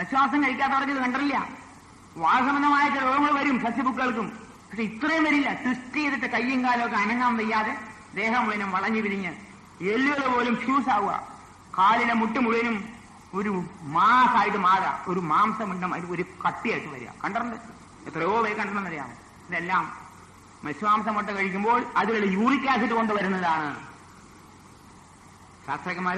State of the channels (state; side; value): identical; both; correlation 1.00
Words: കഴിക്കാത്തവർക്ക് ഇത് കണ്ടിട്ടില്ല. വാസംബന്ധമായ ചില രോഗങ്ങൾ വരും സസ്യബുക്കുകൾക്കും, പക്ഷെ ഇത്രയും വരില്ല. ട്വിസ്റ്റ് ചെയ്തിട്ട് കയ്യും കാലമൊക്കെ അനങ്ങാൻ വയ്യാതെ ദേഹം മുഴുവനും വളഞ്ഞു പിരിഞ്ഞ് എല്ലുകൾ പോലും ഫ്യൂസ് ആവുക, കാലിലെ മുട്ട് മുഴുവനും ഒരു മാസായിട്ട് മാറുക, ഒരു മാംസമുണ്ടും അത് ഒരു കട്ടിയായിട്ട് വരിക. കണ്ടിട്ടുണ്ട്, എത്രയോ പേര് കണ്ടിട്ടുണ്ടെന്നറിയാം. ഇതെല്ലാം മത്സ്യമാംസം മുട്ട കഴിക്കുമ്പോൾ അതിലുള്ള യൂറിക് ആസിഡ് കൊണ്ടുവരുന്നതാണ്. ശാസ്ത്രജ്ഞന്മാർ